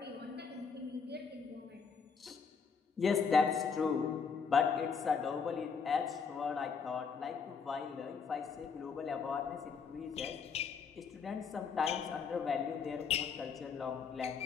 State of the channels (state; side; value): quieter; right; 5.8 dB